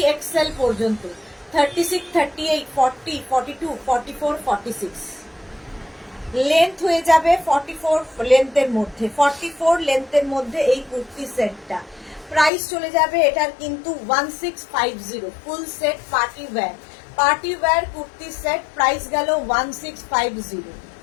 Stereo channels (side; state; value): right; drops out; at 12.5 s